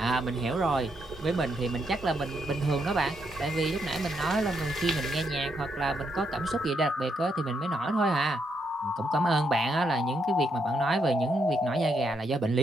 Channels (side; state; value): both; normal; correlation 0.78